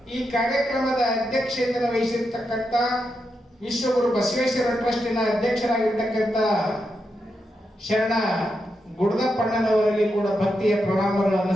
ಈ ಕಾರ್ಯಕ್ರಮದ ಅಧ್ಯಕ್ಷತೆಯನ್ನು ವಹಿಸಿರ್ತಕ್ಕಂಥ ವಿಶ್ವಗುರು ಬಸವೇಶ್ವರ ಟ್ರಸ್ಟಿನ ಅಧ್ಯಕ್ಷರಾಗಿರ್ತಕ್ಕಂಥ ಶರಣ ಗುಡದಪ್ಪಣ್ಣನವರಲ್ಲಿ ಕೂಡ ಭಕ್ತಿಯ ಪ್ರಣಾಮಗಳನ್ನು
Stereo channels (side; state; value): both; normal; correlation 0.85